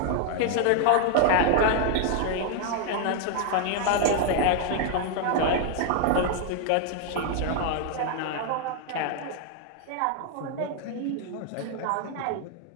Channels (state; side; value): different; both; correlation 0.00